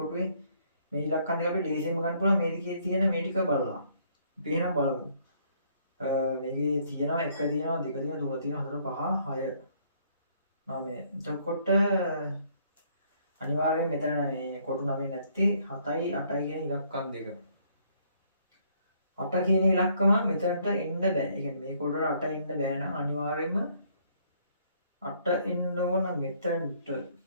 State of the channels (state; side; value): inverted; both; correlation -0.66